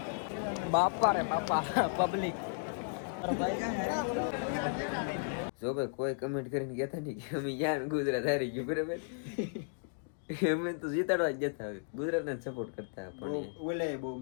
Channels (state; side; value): silent; right; digital silence